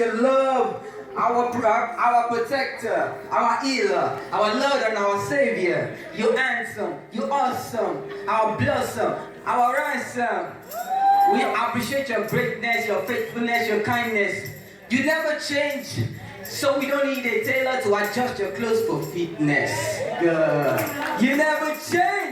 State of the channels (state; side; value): identical; both; correlation 1.00